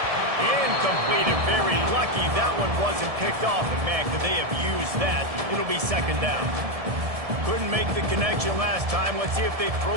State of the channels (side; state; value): left; late; 1.7 ms